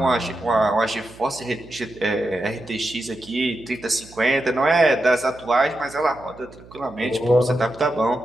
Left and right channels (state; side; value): noise; right; hum, 21 dB below the sound